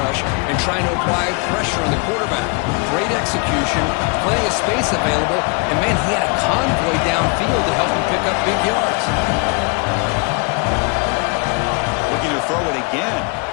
and trying to apply pressure on the quarterback. Great execution, plenty of space available, and man, he had a convoy downfield to help him pick up big yards. Looking to throw it again.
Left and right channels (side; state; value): right; quieter; 31.6 dB